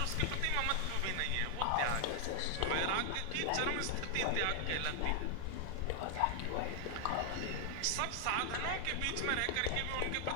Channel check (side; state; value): both; different; correlation 0.00